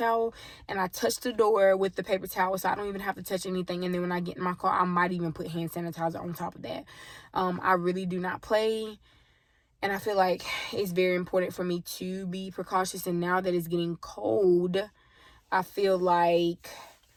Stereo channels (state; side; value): identical; both; correlation 1.00